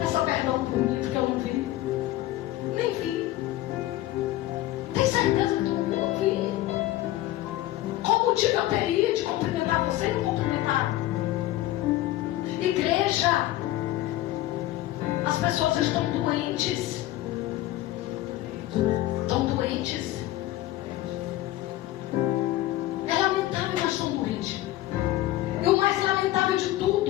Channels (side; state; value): right; quieter; 15.5 dB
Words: perdão por mim, porque eu não vi. Nem vi. Tem certeza que tu não viu? Não vi. Qual motivo eu teria de cumprimentar você e não cumprimentar? Igreja,